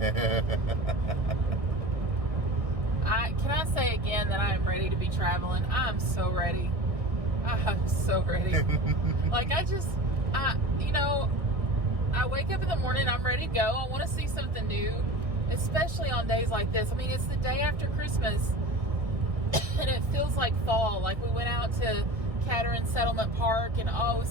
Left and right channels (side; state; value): left; late; 1.6 ms